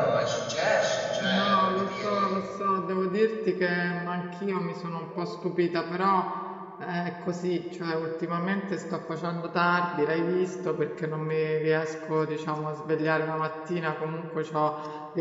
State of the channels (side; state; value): both; identical; correlation 1.00